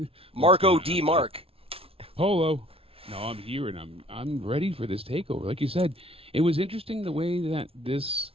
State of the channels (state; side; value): late; left; 0.27 ms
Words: Marco D. Mark. Polo. No, I'm here and I'm ready for this takeover. Like you said, it was interesting the way that this